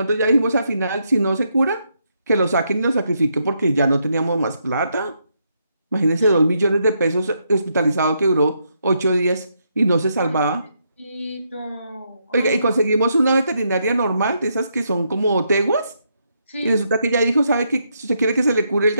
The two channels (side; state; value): both; inverted; correlation -0.78